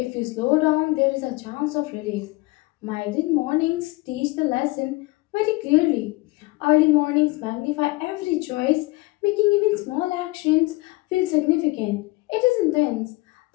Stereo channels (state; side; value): quieter; right; 22.4 dB